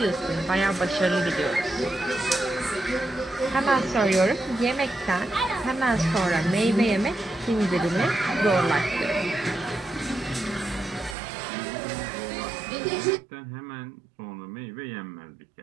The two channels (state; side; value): drops out; left; at 11.2 s